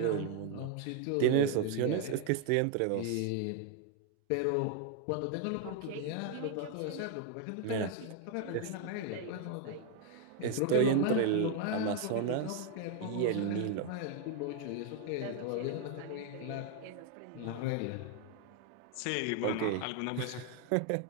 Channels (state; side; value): different; both; correlation 0.00